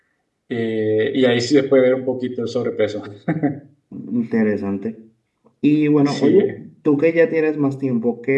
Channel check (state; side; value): identical; both; correlation 1.00